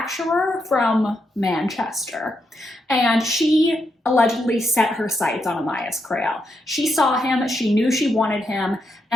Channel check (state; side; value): normal; both; correlation 0.82